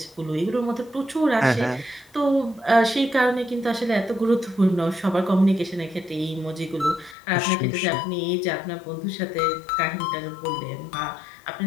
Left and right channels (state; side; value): drops out; right; at 7.2 s